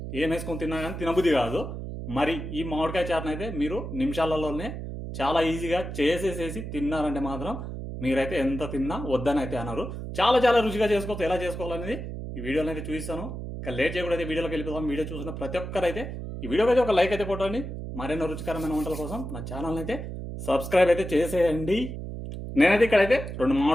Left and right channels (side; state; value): right; noise; hum, 7 dB below the sound